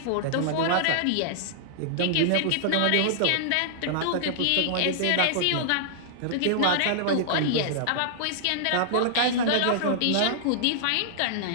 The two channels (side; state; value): both; different; correlation -0.01